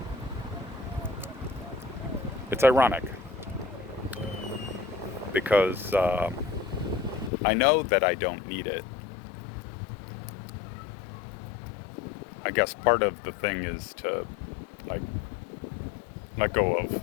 it's ironic because I know that I don't need it. I guess part of the thing is to like let go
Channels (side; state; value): right; drops out; at 7.3 s